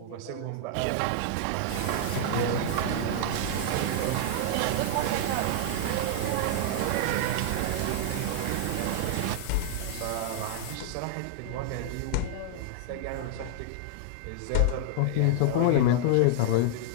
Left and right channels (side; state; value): both; different; correlation -0.01